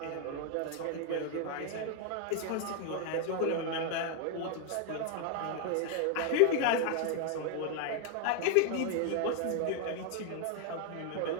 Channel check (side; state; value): both; different; correlation 0.00